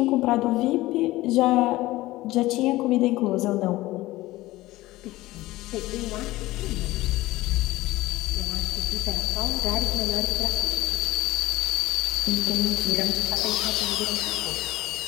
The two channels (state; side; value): quieter; right; 18.0 dB